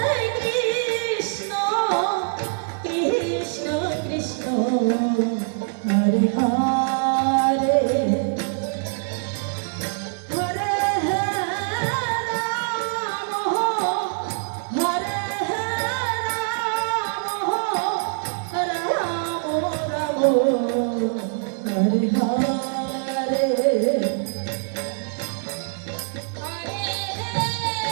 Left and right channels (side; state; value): left; silent; 63 dB below the other